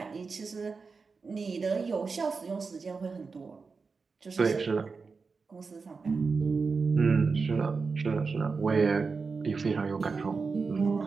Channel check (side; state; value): left; quieter; 4.7 dB